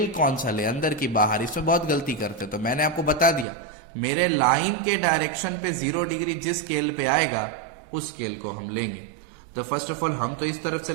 कौन सा ले, अंदर की बाहर. इसमें बहुत गलती करते. तो मैंने आपको बता दिया, मेरे लाइन के डायरेक्शन पे 0 डिग्री जिस स्केल पे आएगा उस स्केल को हम लेंगे. तो फर्स्ट ऑफ ऑल हम तो इस तरफ से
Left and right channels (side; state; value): left; drops out; at 3.5 s